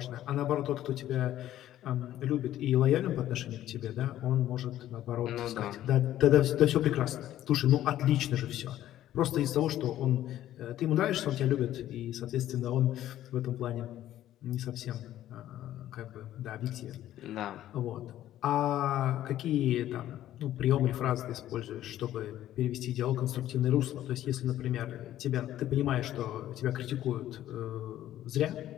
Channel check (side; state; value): right; quieter; 12.9 dB